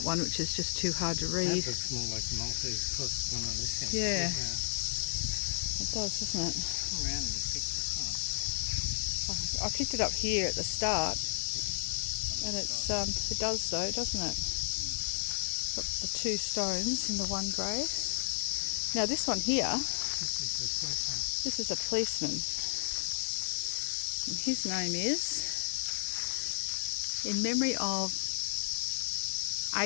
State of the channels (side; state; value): right; silent; 56 dB below the other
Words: one, which is just too hard to read. That looks more like the Maltese cross than on this end. Yeah, it does, doesn't it? Around you picked this up. I picked it up here at the start, and it's it does though, doesn't it? Got the two stones in the one grave. Now this one here, this is a policeman, and his name is, in memory of